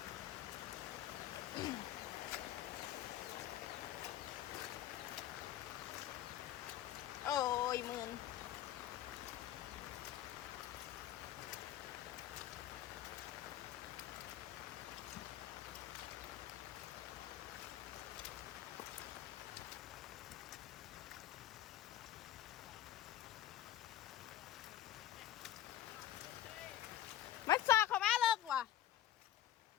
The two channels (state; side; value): quieter; right; 12.8 dB